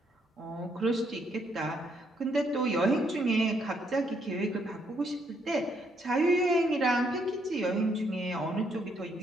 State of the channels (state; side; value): normal; both; correlation 0.73